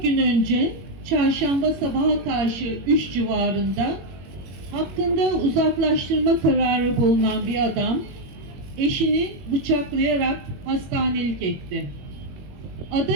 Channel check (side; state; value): left; late; 21 ms